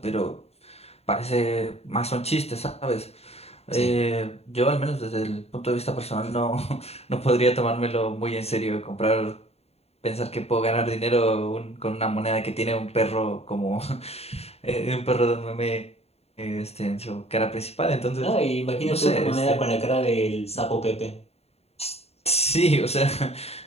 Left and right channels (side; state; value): right; late; 0.30 ms